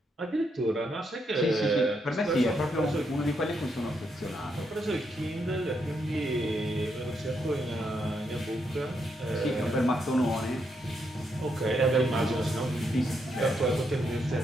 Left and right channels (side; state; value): both; normal; correlation 0.79